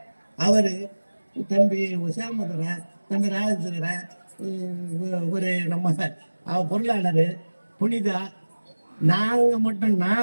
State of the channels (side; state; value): both; inverted; correlation -1.00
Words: அவரு தம்பி சேமதுரை, தம்பி ராஜேந்திரன், ஒரு நம்ம பொருளாளர் புனிதா, நாங்க மட்டும்